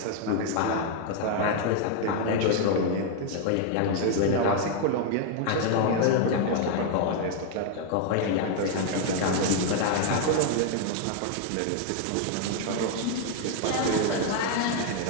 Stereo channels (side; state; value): both; different; correlation 0.00